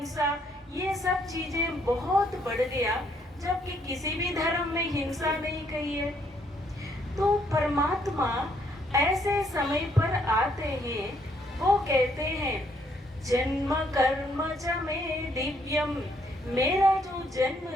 ये सब चीजें बहुत बढ़ गया, जबकि किसी भी धर्म में हिंसा नहीं कही है। तो परमात्मा ऐसे समय पर आते हैं, वो कहते हैं जन्म कर्म च में दिव्यम। मेरा जो जन्म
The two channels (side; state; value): both; normal; correlation 0.70